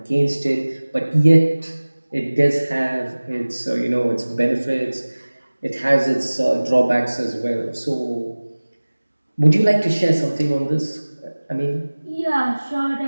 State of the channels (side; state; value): both; inverted; correlation -1.00